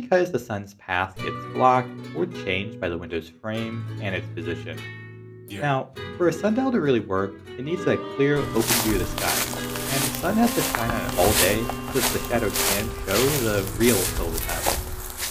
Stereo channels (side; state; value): both; identical; correlation 1.00